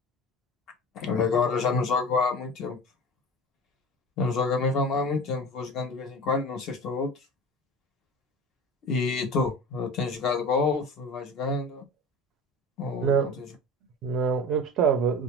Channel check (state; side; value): normal; both; correlation 0.35